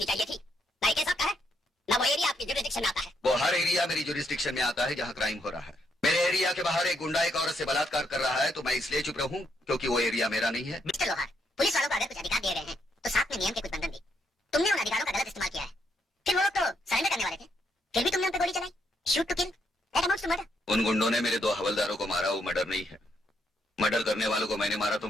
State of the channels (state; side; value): normal; both; correlation 0.76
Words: चाहिए थी। ना ये केस आपका है, ना वो एरिया आपकी जुरिस्डिक्शन में आता है। वो हर एरिया मेरी जुरिस्डिक्शन में आता है जहाँ क्राइम हो रहा है। मेरे एरिया के बाहर एक गुंडा एक औरत से बलात्कार कर रहा है, तो मैं इसलिए चुप रहूं क्योंकि वो एरिया मेरा नहीं है। मिस्टर लोहार, पुलिस वालों को अगर कुछ अधिकार दे रहे हैं तो साथ में नियम के कुछ बंधन भी। तुमने उन अधिकारों का गलत इस्तेमाल किया है। फिर वो लोग तो सरेंडर करने वाले थे, फिर भी तुमने उन पर गोली चलाई। Shoot to kill, that amounts to murder. उन गुंडों ने मेरे 2 हवलदारों को मारा, वो मर्डर नहीं है। मर्डर करने वालों को मैंने मारा तो